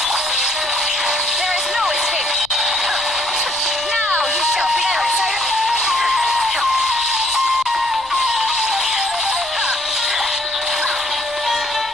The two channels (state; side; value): noise; left; rumble, 26 dB below the sound